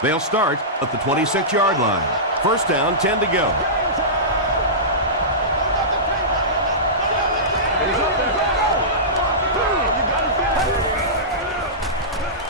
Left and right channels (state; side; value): normal; both; correlation -0.18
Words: They'll start at the 26-yard line. 1st down, 10 to go.